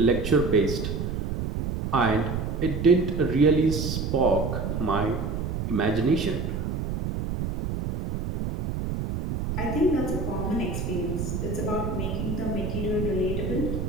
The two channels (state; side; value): noise; right; rumble, 3 dB below the sound